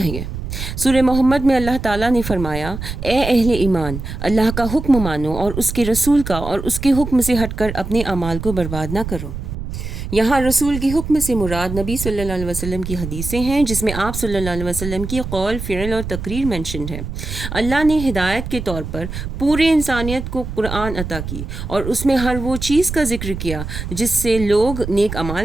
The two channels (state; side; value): noise; right; rumble, 7 dB below the sound